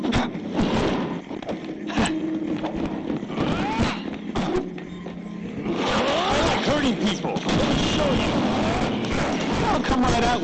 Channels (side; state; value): both; identical; correlation 1.00